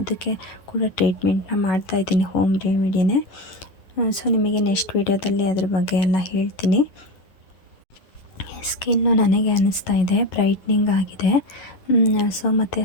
ಕೂಡ ಟ್ರೀಟ್ಮೆಂಟ್ನ ಮಾಡ್ತಾಯಿದ್ದೀನಿ, ಹೋಮ್ ರೆಮಿಡಿನೇ. ಸೊ ನಿಮಗೆ ನೆಕ್ಸ್ಟ್ ವೀಡಿಯೋದಲ್ಲಿ ಅದ್ರ ಬಗ್ಗೆ ಎಲ್ಲ ಹೇಳ್ತೀನಿ. ಸ್ಕಿನ್ನು ನನಗೆ ಅನ್ನಿಸ್ತಾ ಇದೆ ಬ್ರೈಟ್ನಿಂಗ್ ಆಗಿದೆ. ಸೊ ಮತ್ತು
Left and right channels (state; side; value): late; right; 11 ms